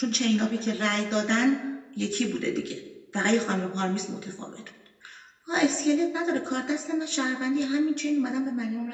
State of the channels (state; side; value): identical; both; correlation 1.00